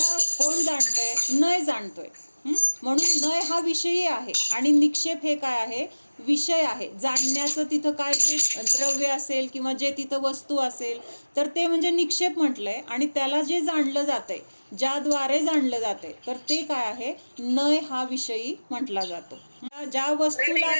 कोण जाणतंय? नय जाणतोय. म्हणून नय हा विषयी आहे आणि निक्षेप हे काय आहे? विषय आहे. जाणण्याचं तिथं काय जे द्रव्य असेल किंवा जे तिथं वस्तू असेल तर ते म्हणजे निक्षेप म्हटलंय. आणि त्याला जे जाणलं जातंय, ज्याद्वारे जाणलं जाते, तर ते काय आहे? नय हा विषयी म्हटला जातो. ज्या वस्तूला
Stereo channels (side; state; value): both; inverted; correlation -1.00